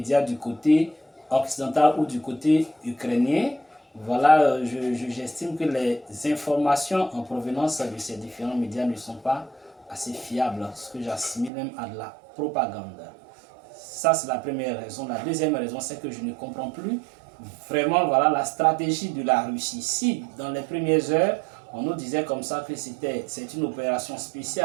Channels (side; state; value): left; drops out; at 11.5 s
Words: du côté occidental ou du côté ukrainien. Voilà, j'estime que les informations en provenance de ces différents médias ne sont pas assez fiables, ce que j'assimile même à de la propagande. Ça, c'est la première raison. La deuxième raison, c'est que je ne comprends plus vraiment voilà, la stratégie de la Russie. Si, dans les premières heures, on nous disait comme ça que c'est une opération